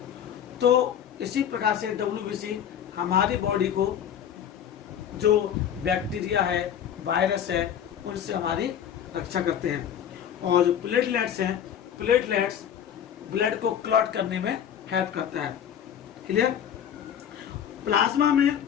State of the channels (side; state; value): right; quieter; 9.2 dB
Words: तो इसी प्रकार से डब्ल्यूबीसी हमारी बॉडी को जो बैक्टीरिया है, वायरस है, उनसे हमारी रक्षा करते हैं। और जो प्लेटलेट्स हैं, प्लेटलेट्स ब्लड को क्लॉट करने में हेल्प करता है। क्लियर। प्लाज्मा में